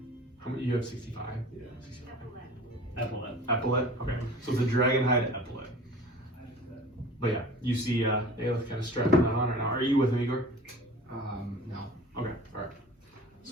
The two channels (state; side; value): normal; both; correlation 0.42